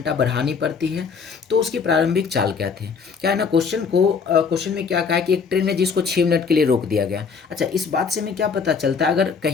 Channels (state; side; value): quieter; right; 5.6 dB